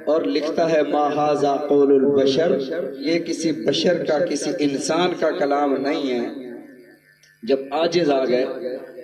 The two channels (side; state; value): both; identical; correlation 1.00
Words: اور لکھتا ہے ما ھذا قول البشر، یہ کسی بشر کا، کسی انسان کا کلام نہیں ہے. جب عاجز آ گئے،